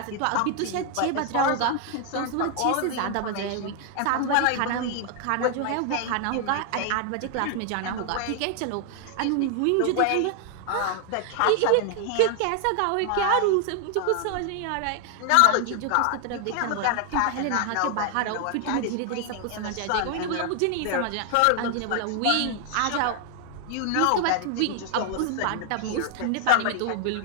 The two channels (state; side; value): different; both; correlation 0.00